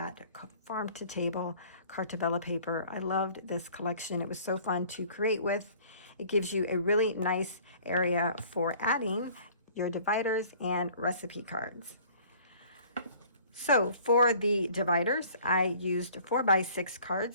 Farm to Table Cartabella paper. I loved this collection. It was so fun to create with. It gives you a really nice area for adding your dividers and recipe cards. So for the dividers, I used 4x6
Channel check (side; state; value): both; inverted; correlation -0.52